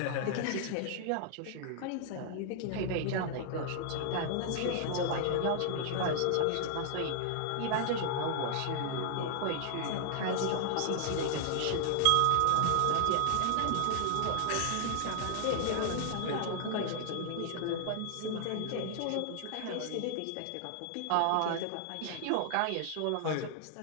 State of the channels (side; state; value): both; different; correlation 0.00